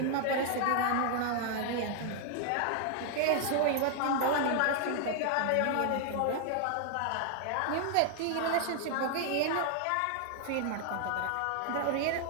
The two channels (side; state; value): both; different; correlation 0.00